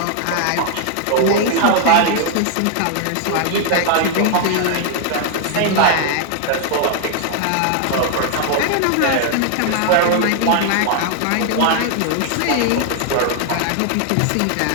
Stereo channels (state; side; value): different; both; correlation 0.00